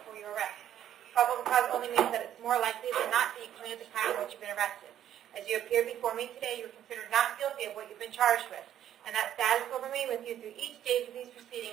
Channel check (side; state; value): left; quieter; 10.9 dB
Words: for your arrest. Probable cause only means that it's more likely than not that you committed the crime for which you've been arrested. As you appear before me today, you are considered not guilty of what you've been charged with, and that status will remain with you through each stage of these